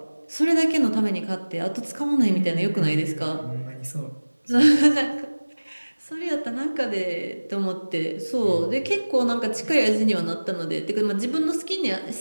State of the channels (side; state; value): both; inverted; correlation -1.00